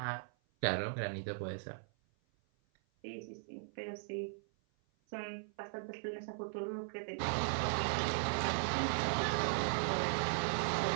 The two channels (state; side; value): silent; left; 52 dB below the other